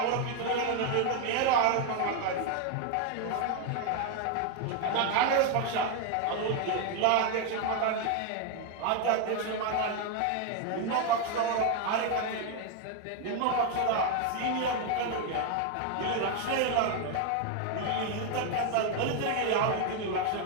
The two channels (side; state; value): both; different; correlation 0.01